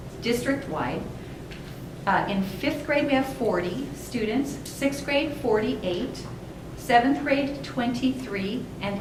district-wide. In 5th grade, we have 40 students, 6th grade, 48, 7th grade, 23, and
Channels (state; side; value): identical; both; correlation 1.00